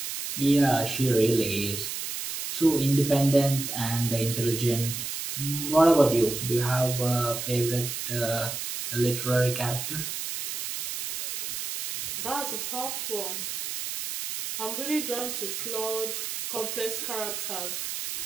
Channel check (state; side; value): noise; right; hiss, 5 dB below the sound